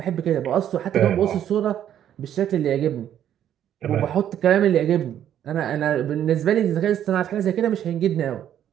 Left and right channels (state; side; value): quieter; left; 10.4 dB